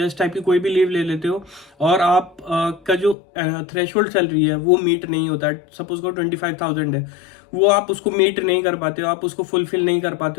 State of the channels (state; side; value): drops out; right; at 3.2 s